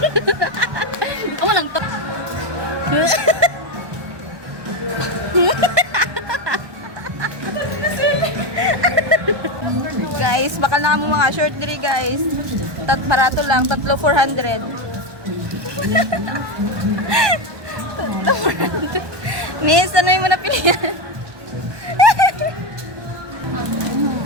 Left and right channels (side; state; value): left; late; 1.2 ms